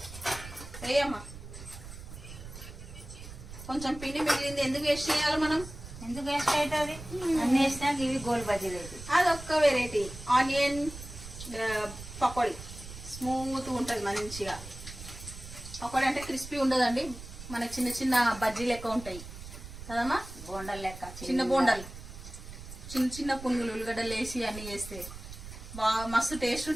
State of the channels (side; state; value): right; noise; rumble, 13 dB below the sound